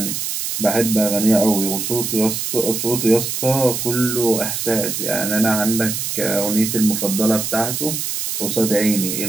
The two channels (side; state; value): right; noise; hiss, 3 dB below the sound